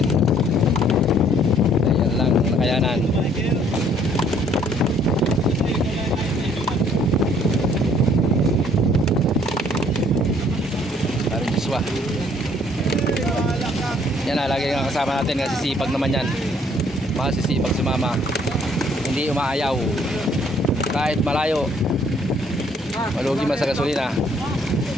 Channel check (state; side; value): normal; both; correlation 0.62